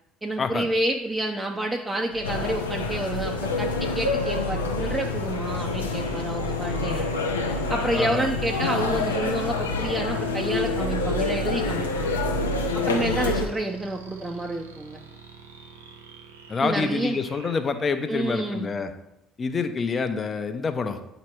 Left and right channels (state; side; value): normal; both; correlation 0.40